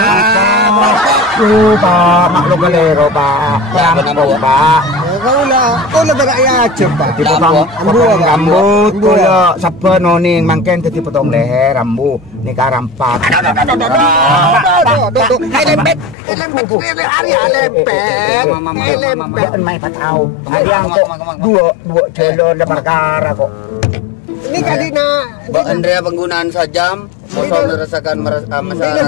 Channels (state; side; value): drops out; right; at 16.2 s